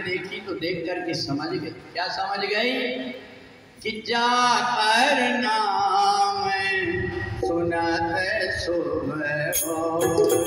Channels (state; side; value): identical; both; correlation 1.00